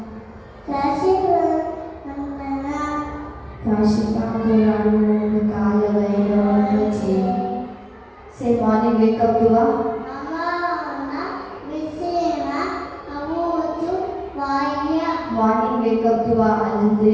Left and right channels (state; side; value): identical; both; correlation 1.00